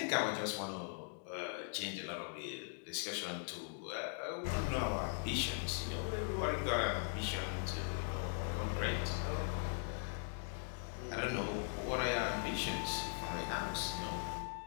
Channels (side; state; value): right; silent; 51 dB below the other